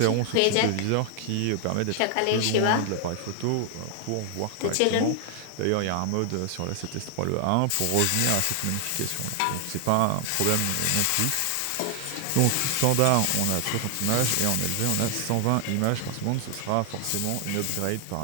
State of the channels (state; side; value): different; both; correlation 0.00